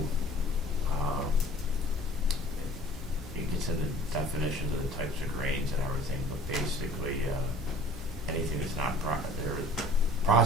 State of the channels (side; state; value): both; normal; correlation 0.48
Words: it gets into definitions of the types of grains and everything, but basically, anything that's not their